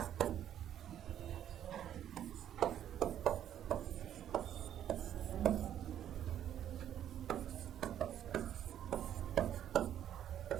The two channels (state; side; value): quieter; left; 10.6 dB